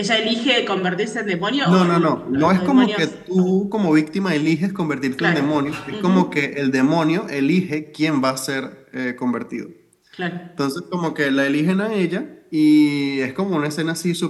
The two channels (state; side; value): identical; both; correlation 1.00